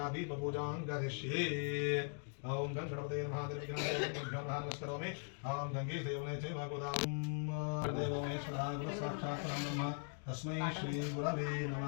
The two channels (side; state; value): right; silent; 51 dB below the other